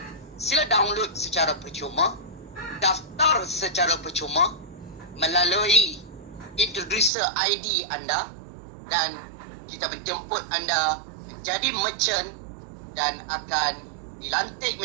Sila download secara percuma, daftar secara percuma melalui introducer ID anda, dan kita menjemput anda menjadi merchant dan akan dilantik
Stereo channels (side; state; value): left; drops out; at 7.1 s